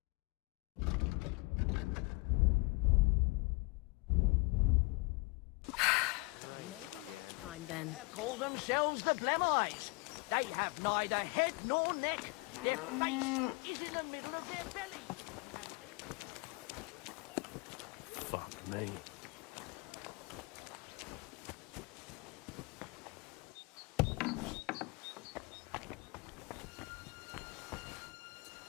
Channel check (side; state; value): right; quieter; 28.0 dB